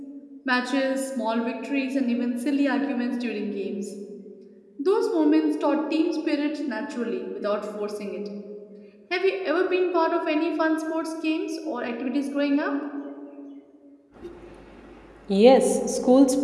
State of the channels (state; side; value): identical; both; correlation 1.00